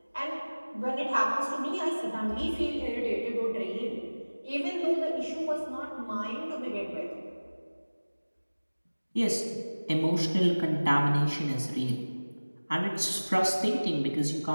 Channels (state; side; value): inverted; both; correlation -1.00